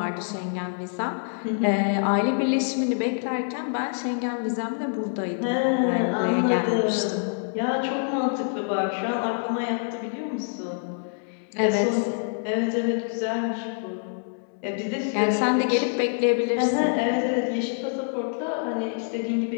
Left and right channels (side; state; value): right; silent; digital silence